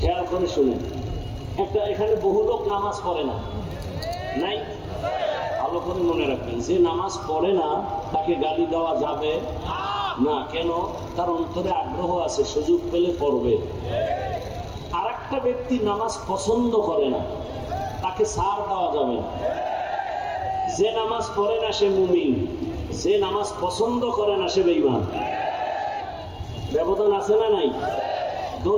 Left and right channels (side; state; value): both; identical; correlation 1.00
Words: করে শুনেন। একটা এখানে বহু লোক নামাজ পড়ে না, নাই? ভালো করে মনে রাখবেন, যে নামাজ পড়ে না তাকে গালি দেওয়া যাবে না। কেন? তার অন্তরে আগ্রহ আছে, সুযোগ পেলে পড়বে। আর একটা ব্যক্তি নামাজ পছন্দ করে না, তাকে ছাড় দেওয়া যাবে না। যে নামাজ পড়ে না সে মুমিন, যে নামাজ পছন্দ করে না সে বেঈমান। ব্যবধান আছে না নাই?